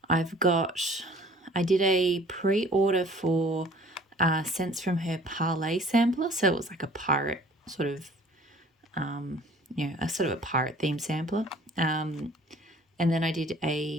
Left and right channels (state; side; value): normal; both; correlation 0.51